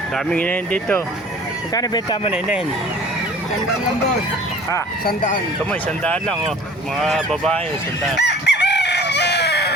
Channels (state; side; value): normal; both; correlation 0.47